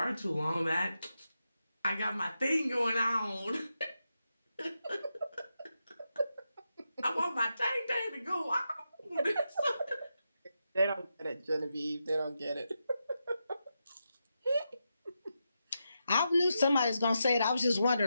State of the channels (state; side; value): inverted; both; correlation -0.87